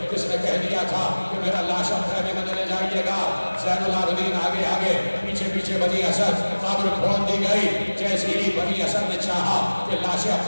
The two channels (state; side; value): inverted; both; correlation -1.00